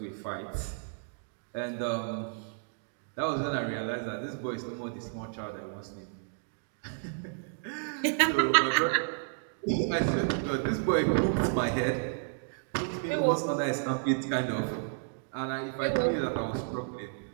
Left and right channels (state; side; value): silent; left; digital silence